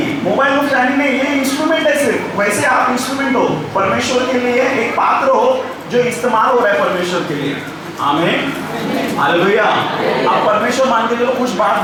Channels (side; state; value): both; identical; correlation 1.00